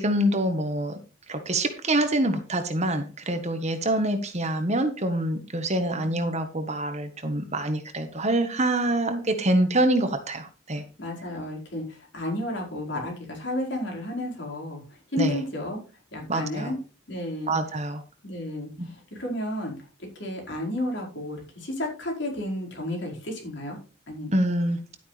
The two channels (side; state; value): both; normal; correlation 0.46